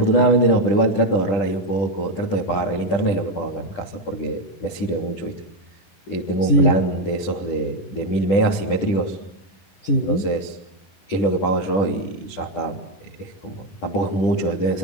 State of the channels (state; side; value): late; right; 10 ms